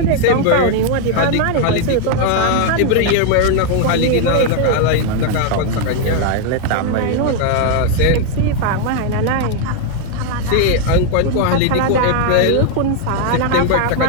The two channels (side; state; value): both; different; correlation 0.01